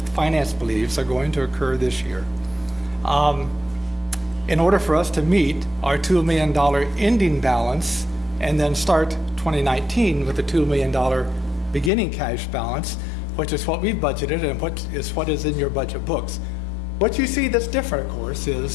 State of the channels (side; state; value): right; drops out; at 11.9 s